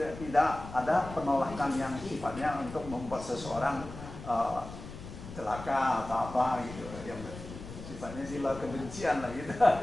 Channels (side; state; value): left; noise; rumble, 12 dB below the sound